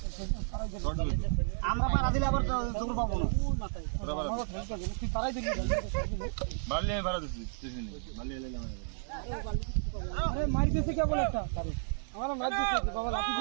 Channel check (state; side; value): silent; left; digital silence